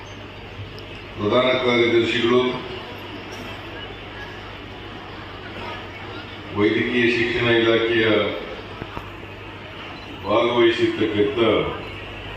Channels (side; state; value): both; identical; correlation 1.00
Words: ಪ್ರಧಾನ ಕಾರ್ಯದರ್ಶಿಗಳು, ವೈದ್ಯಕೀಯ ಶಿಕ್ಷಣ ಇಲಾಖೆಯ ಭಾಗವಹಿಸಿರ್ತಕ್ಕಂಥ